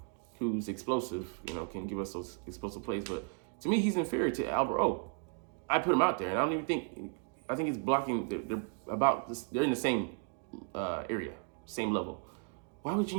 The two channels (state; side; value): quieter; left; 38.4 dB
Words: who's explosive, can give us those explosive plays. But to me, he's inferior to Albert O. I put him out there, and I don't even think. I think he's blocking. They're about this. They're in the same area, same level. Why would